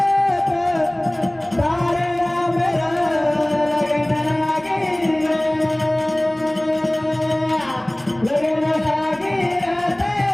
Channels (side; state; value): right; noise; rumble, 29 dB below the sound